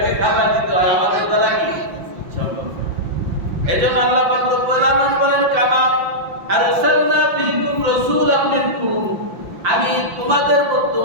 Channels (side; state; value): left; late; 5.7 ms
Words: খাবার দিতে হয়, আমাদের দ্বারা কি সম্ভব? এজন্য আল্লাহ পাক রব্বুল আলামিন বলেন, কামা আরসালনা ফীকুম রাসূলাম মিনকুম। আমি তোমাদের মধ্য